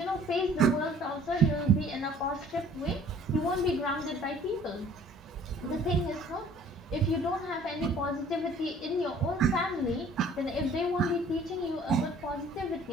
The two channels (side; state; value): both; normal; correlation 0.54